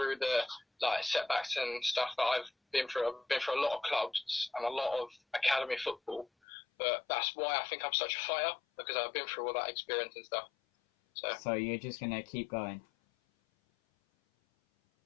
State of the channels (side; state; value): right; drops out; at 6.2 s